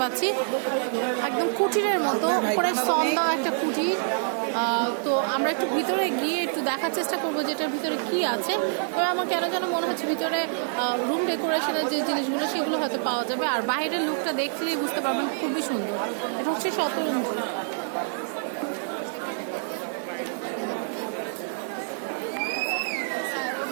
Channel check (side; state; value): left; silent; 61 dB below the other